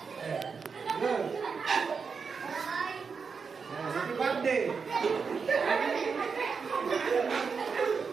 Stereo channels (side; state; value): left; quieter; 5.5 dB